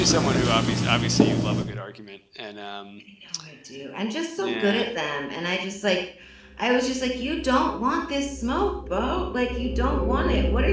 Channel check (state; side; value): identical; both; correlation 1.00